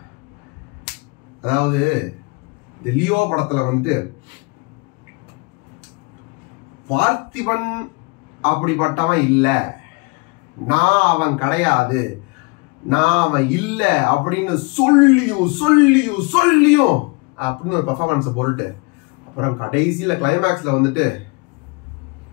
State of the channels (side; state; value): right; quieter; 29.0 dB